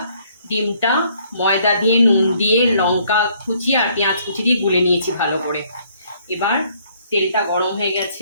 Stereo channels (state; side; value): inverted; both; correlation -0.64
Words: ডিমটা ময়দা দিয়ে, নুন দিয়ে, লঙ্কা কুচি আর পেঁয়াজ কুচি দিয়ে গুলে নিয়েছি ভালো করে। এবার তেলটা গরম হয়ে